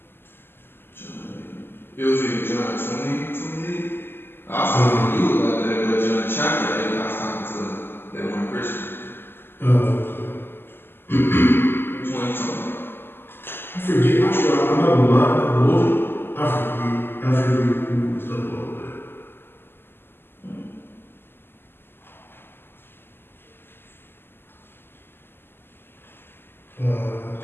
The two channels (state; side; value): late; right; 0.10 ms